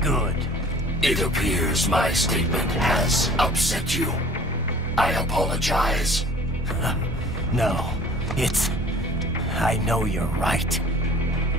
good. It appears my statement has upset you. I apologize. No, it's... I know you're right.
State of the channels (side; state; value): both; normal; correlation 0.49